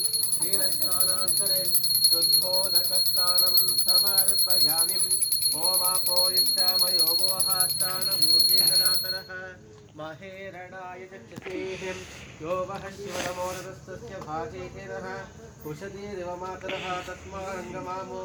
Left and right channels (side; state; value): both; identical; correlation 1.00